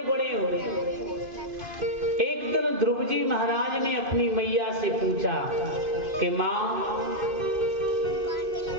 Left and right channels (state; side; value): late; left; 2.5 ms